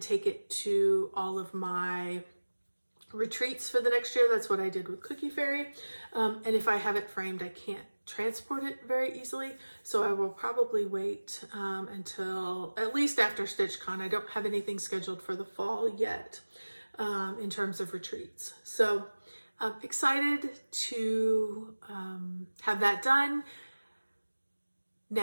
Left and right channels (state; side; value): inverted; both; correlation -1.00